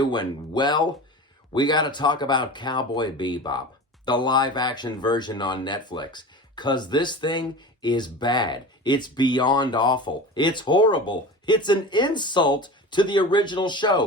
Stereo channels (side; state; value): both; normal; correlation 0.33